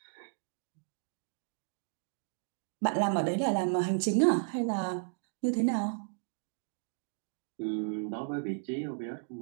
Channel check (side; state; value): left; silent; digital silence